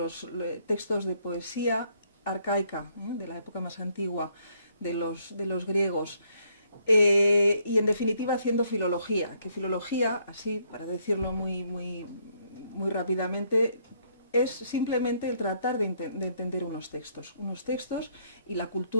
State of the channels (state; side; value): inverted; both; correlation -0.70